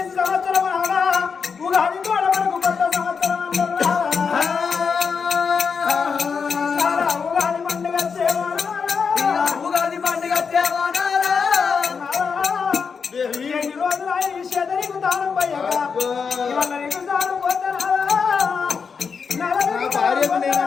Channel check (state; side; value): quieter; right; 5.8 dB